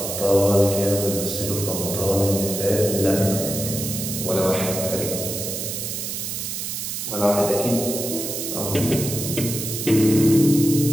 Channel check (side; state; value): right; noise; hiss, 4 dB below the sound